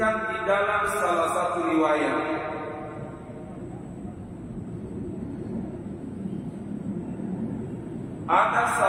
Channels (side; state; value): both; identical; correlation 1.00